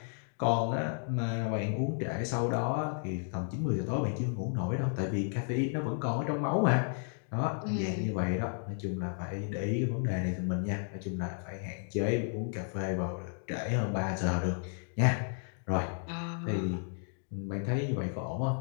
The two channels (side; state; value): right; silent; 56 dB below the other